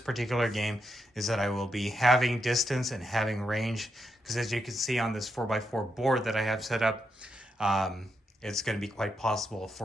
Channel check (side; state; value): both; normal; correlation 0.83